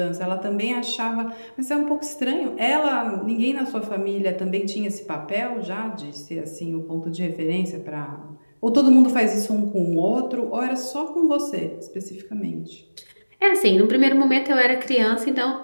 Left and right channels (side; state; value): both; inverted; correlation -1.00